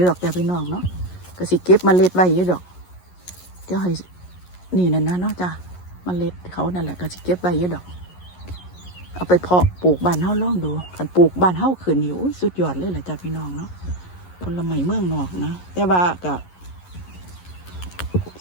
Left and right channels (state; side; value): late; right; 11 ms